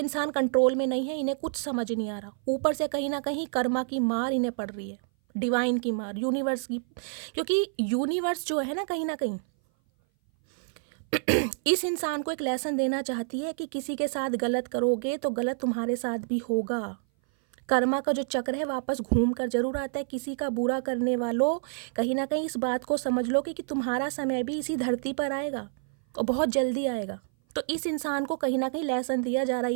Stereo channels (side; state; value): left; silent; 58 dB below the other